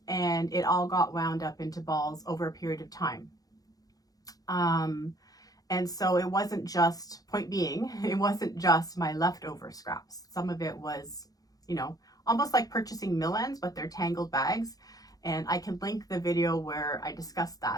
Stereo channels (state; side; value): late; right; 0.18 ms